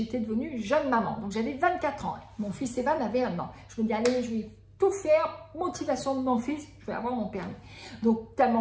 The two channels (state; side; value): identical; both; correlation 1.00